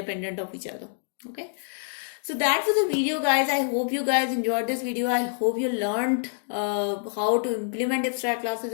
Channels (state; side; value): silent; right; 61 dB below the other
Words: of each other. Okay. So that was the video, guys. I hope you guys enjoyed this video. I hope you learned how to implement abstract classes